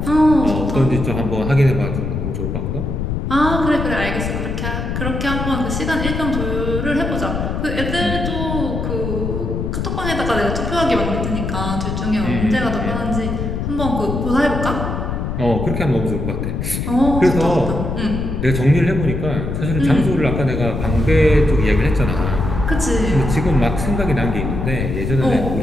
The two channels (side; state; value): left; noise; rumble, 3 dB below the sound